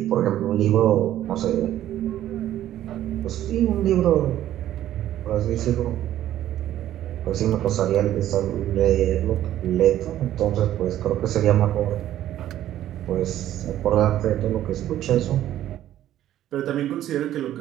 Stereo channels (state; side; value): quieter; left; 12.5 dB